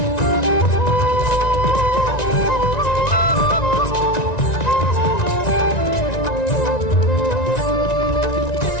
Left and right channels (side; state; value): right; late; 1.9 ms